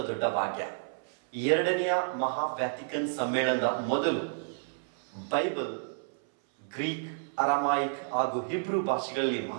ದೊಡ್ಡ ಭಾಗ್ಯ. ಎರಡನೆಯ ಮಹಾ ವ್ಯಾಟಿಕನ್ ಸಮ್ಮೇಳನದ ಮೊದಲು ಬೈಬಲ್ ಗ್ರೀಕ್, ಅರಾಮಾಯಿಕ್ ಹಾಗೂ ಹಿಬ್ರೂ ಭಾಷೆಗಳಲ್ಲಿ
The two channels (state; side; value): silent; left; 57 dB below the other